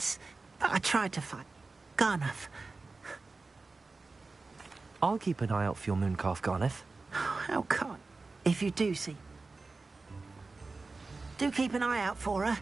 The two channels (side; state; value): left; quieter; 3.8 dB